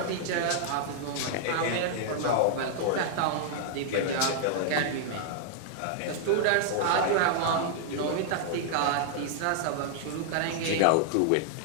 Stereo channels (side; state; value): both; different; correlation -0.01